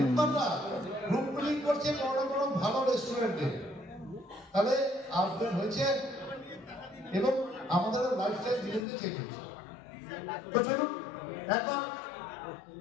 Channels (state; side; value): drops out; right; at 8.8 s